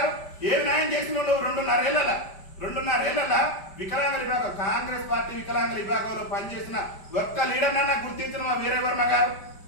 ఏం న్యాయం చేసిన నువ్వు 2.5 ఏళ్ల వికలాంగుల విభాగం కాంగ్రెస్ పార్టీ వికలాంగుల విభాగంలో పనిచేసిన ఒక్క లీడర్ నన్నా గుర్తించిన వీరవర్మ గారు?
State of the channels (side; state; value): right; late; 5.1 ms